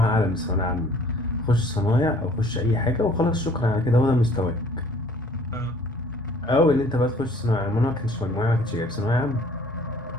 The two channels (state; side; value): normal; both; correlation 0.55